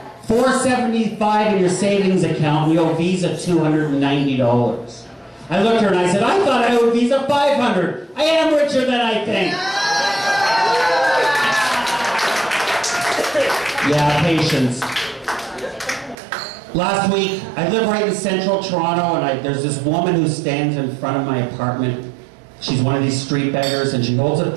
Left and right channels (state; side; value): drops out; left; at 16.2 s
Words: $475 in your savings account, and you owe Visa $290. I looked at her and I said, "I thought I owed Visa $500. I am richer than I think." Yeah, patience. Last week, I live right in central Toronto, and there's this woman who stands in front of my apartment. She's one of these street beggars, and she holds a